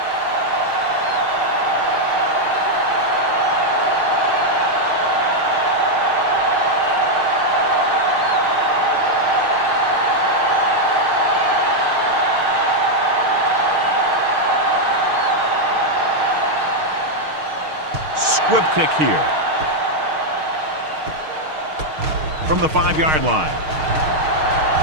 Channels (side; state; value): left; late; 6.5 ms